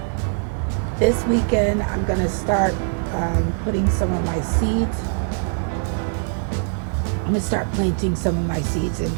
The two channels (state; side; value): silent; left; 64 dB below the other